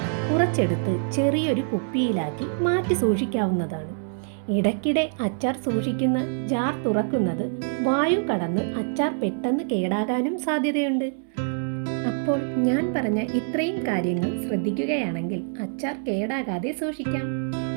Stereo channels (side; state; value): left; silent; 62 dB below the other